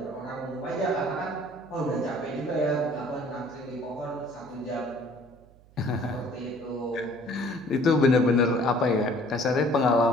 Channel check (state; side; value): noise; right; hum, 26 dB below the sound